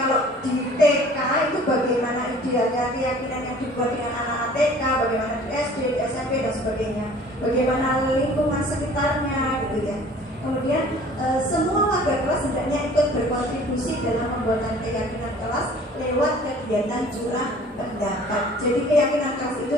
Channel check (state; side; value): normal; both; correlation 0.49